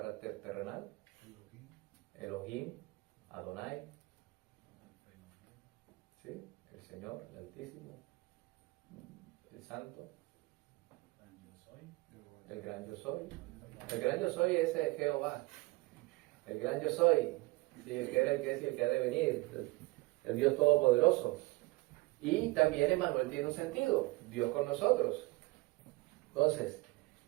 terrenal. Elohim, Adonai, ¿sí? El Señor, el Altísimo, el Santo, el Gran Yo Soy. El Gran Yo Soy es Jehová, el Gran Yo Soy, ¿sí? El que era, el que es y el que ha de venir, el Dios Todopoderoso. Y también Emmanuel tiene un sentido, Dios con nosotros. Entonces,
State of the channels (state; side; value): quieter; left; 22.8 dB